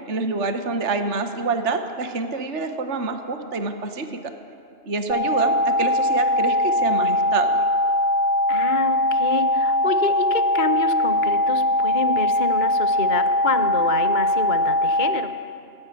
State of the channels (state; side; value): late; left; 2.9 ms